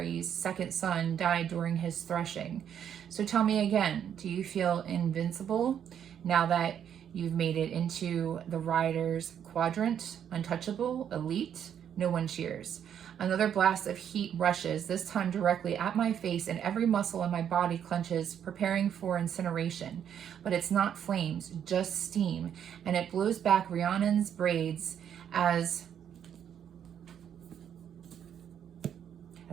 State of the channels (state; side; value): quieter; left; 9.0 dB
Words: second son died during his threshing. So tell me again, do you feel invincible now that you've made it into the Riders Quadrant? Untouchable? Elite? No one cheers. Another blast of heat rushes, this time directly at my face, and every muscle in my body clenches, preparing for incineration. But it's not flames, just steam, and it blows back Rhiannon's braids as